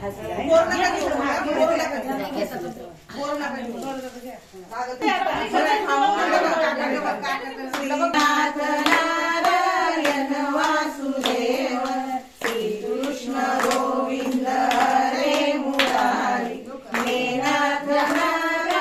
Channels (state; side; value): identical; both; correlation 1.00